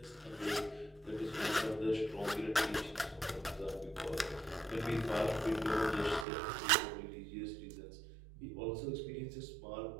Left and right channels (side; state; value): left; drops out; at 6.2 s